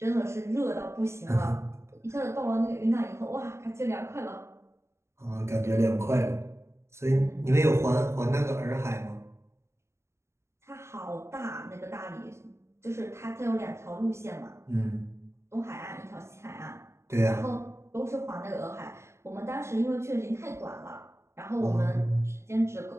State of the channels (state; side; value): late; left; 0.13 ms